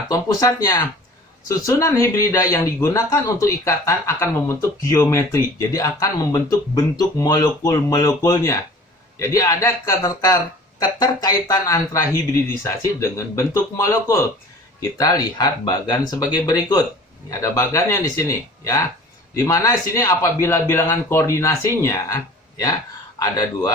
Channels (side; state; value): both; normal; correlation 0.45